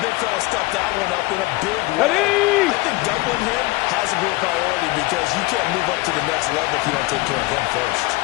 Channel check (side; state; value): right; quieter; 21.4 dB